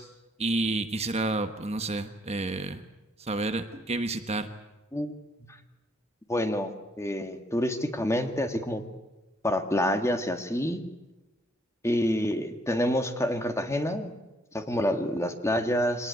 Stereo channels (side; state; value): both; normal; correlation 0.68